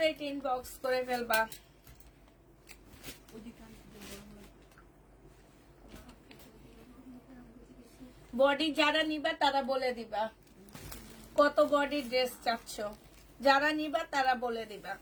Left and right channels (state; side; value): identical; both; correlation 1.00